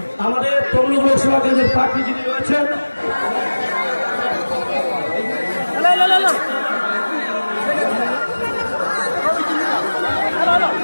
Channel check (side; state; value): both; inverted; correlation -1.00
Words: আমাদের তমলুক লোকসভা কেন্দ্রের প্রার্থী যিনি রয়েছেন,